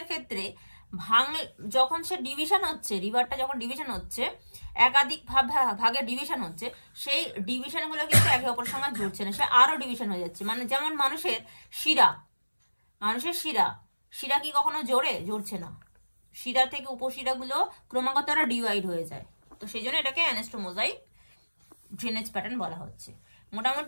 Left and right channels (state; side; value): inverted; both; correlation -1.00